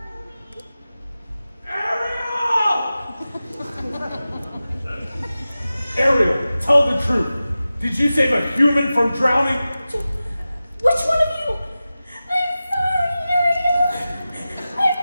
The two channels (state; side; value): inverted; both; correlation -0.95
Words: Ariel, tell the truth. Did you save a human from drowning? Which one of you? I'm sorry, Ariel. I'm